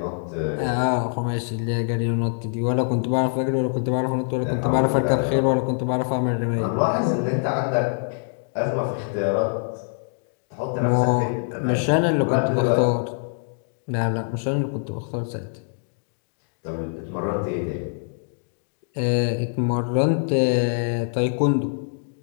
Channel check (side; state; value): right; silent; digital silence